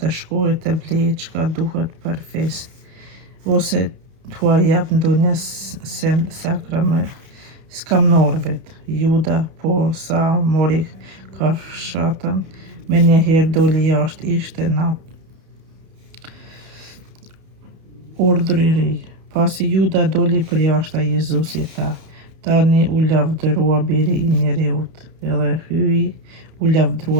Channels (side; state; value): left; late; 31 ms